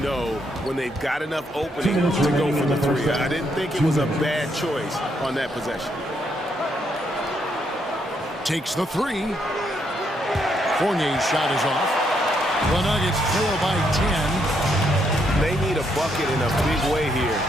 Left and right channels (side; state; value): both; normal; correlation 0.75